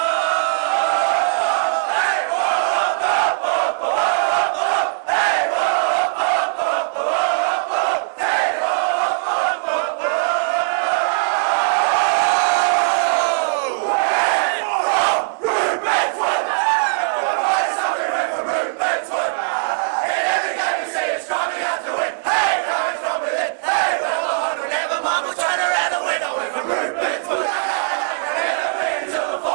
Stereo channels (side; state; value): left; silent; 66 dB below the other